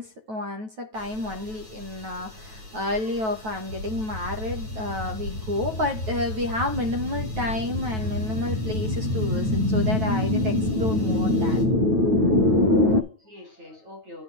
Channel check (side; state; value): left; late; 9.2 ms